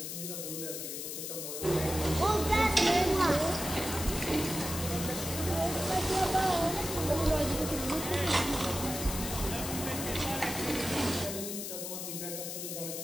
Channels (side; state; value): left; noise; hiss, 6 dB below the sound